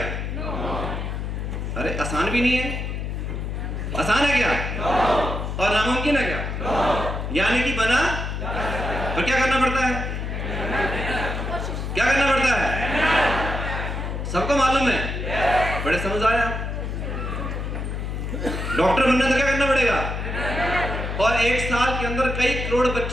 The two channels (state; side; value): noise; left; hum, 4 dB below the sound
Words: अरे आसान भी नहीं है, आसान है क्या? और नामुमकिन है क्या? यानी कि बना तो क्या करना पड़ता है? क्या करना पड़ता है? सबको मालूम है, बड़े समझ आए आप। डॉक्टर बनना तो क्या करना पड़ेगा? और 1 साल के अंदर कई करोड़